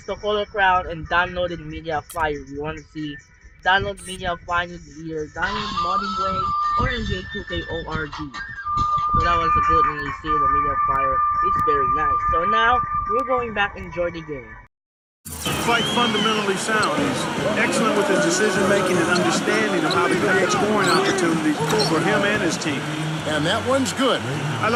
the color crown and downloaded Media Fire. If you want to see, download Media Fire, either download Modding Way or NJ2K.org. So that was a good one. You see the Media Fire. It's very nice. So now we're going back and enjoy the game. Quite fundamentally sound. He's excellent with his decision-making and understanding of how to create scoring opportunities for him and his team. And that one's good. I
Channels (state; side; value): identical; both; correlation 1.00